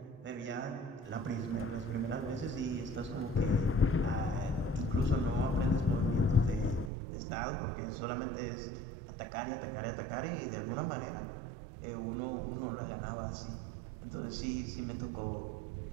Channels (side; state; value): left; drops out; at 6.9 s